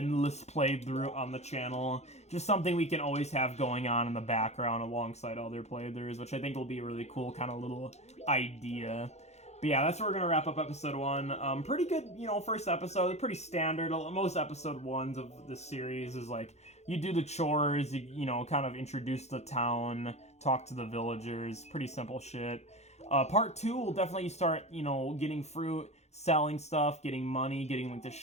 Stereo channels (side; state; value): right; late; 0.32 ms